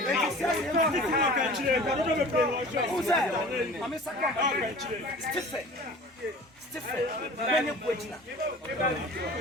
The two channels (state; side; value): normal; both; correlation 0.42